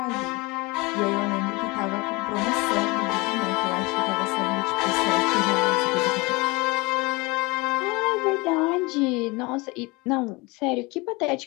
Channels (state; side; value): quieter; right; 25.2 dB